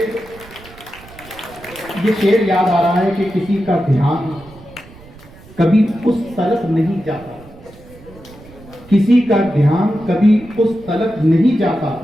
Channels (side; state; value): right; noise; rumble, 21 dB below the sound